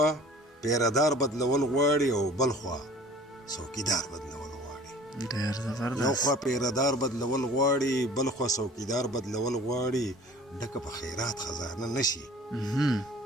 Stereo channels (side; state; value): both; normal; correlation 0.47